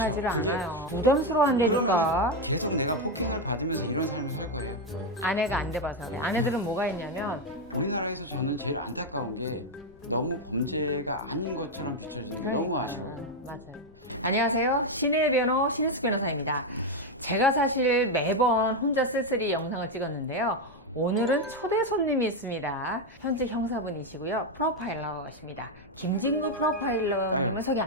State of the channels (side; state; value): left; noise; rumble, 26 dB below the sound